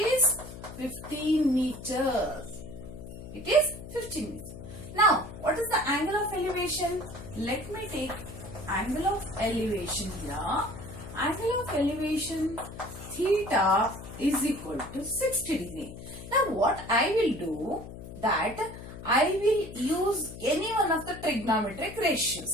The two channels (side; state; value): left; noise; hum, 12 dB below the sound